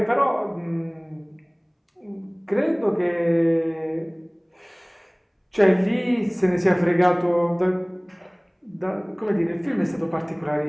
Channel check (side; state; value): both; identical; correlation 1.00